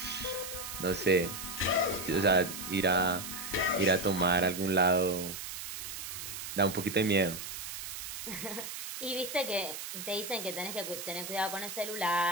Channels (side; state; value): right; noise; hiss, 7 dB below the sound